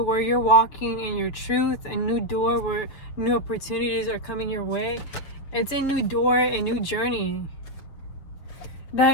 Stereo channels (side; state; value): right; late; 6.7 ms